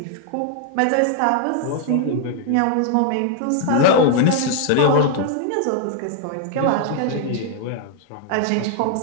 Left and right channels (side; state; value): both; different; correlation 0.00